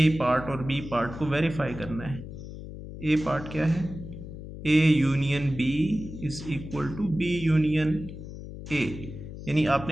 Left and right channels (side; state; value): left; noise; hum, 11 dB below the sound